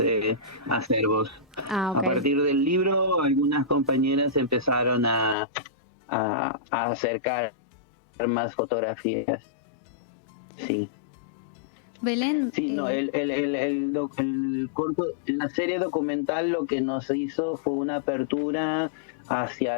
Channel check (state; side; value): drops out; right; at 5.4 s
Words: acervos. Okay. A partir del libro, algunas compañeras empezaron a acercar más fotografías. Sí. Belén. Sí, no, el corto, la serie documental lo que nos hizo fue una apertura